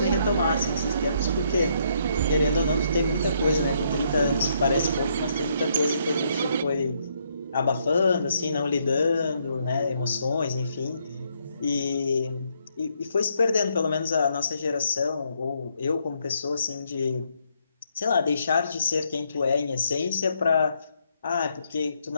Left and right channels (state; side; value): inverted; both; correlation -0.73